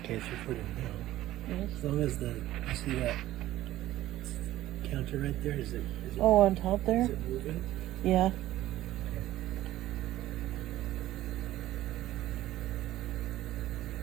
chance you put them down. Yes. As long as you see that counter right there, is it Oh, on top there? is it moving? Yeah.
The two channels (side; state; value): left; quieter; 14.7 dB